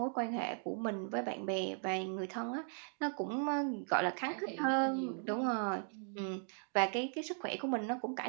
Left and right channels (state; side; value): silent; left; 53 dB below the other